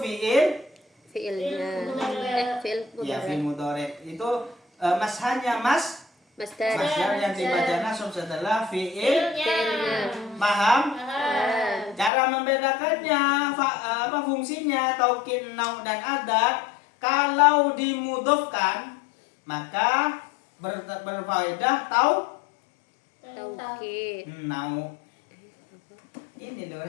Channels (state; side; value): drops out; right; at 12.1 s